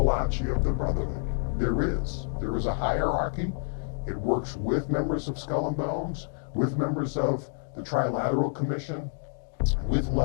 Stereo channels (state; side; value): silent; right; digital silence